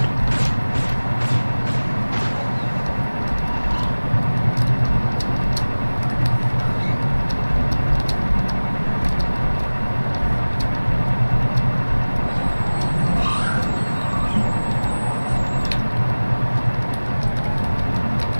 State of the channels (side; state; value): both; inverted; correlation -1.00